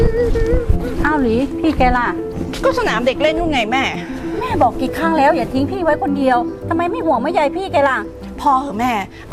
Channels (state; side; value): identical; both; correlation 1.00